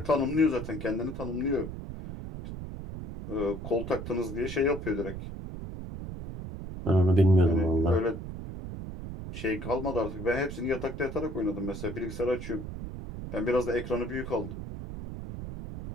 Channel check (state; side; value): noise; right; rumble, 8 dB below the sound